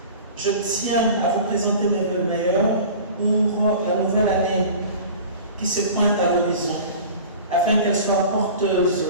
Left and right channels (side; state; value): both; inverted; correlation -0.39